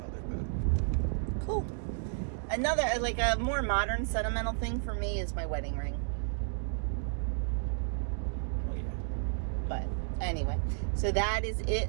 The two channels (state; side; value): silent; left; digital silence